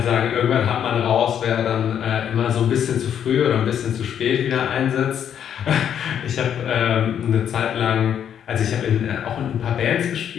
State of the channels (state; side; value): quieter; right; 9.1 dB